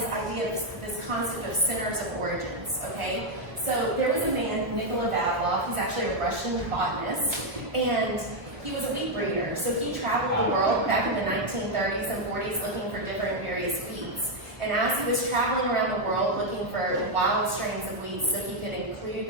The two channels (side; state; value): left; late; 1.0 ms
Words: idea of this concept of centers of origins, okay? So there was a man, Nikolai Vavilov, he's actually a Russian botanist, and he was a wheat breeder. So he traveled the world back in the 1930s and 40s looking for different various wheats. And as he was traveling around the world looking for wild strains of wheat so he could include